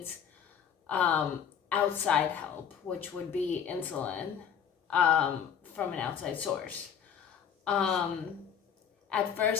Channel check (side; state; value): right; quieter; 7.8 dB